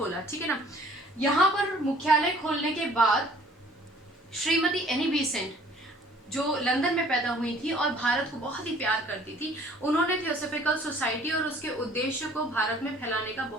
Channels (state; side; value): normal; both; correlation 0.55